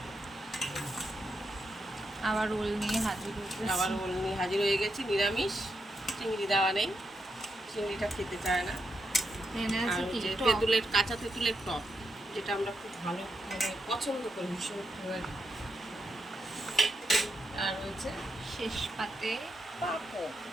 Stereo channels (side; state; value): both; normal; correlation 0.83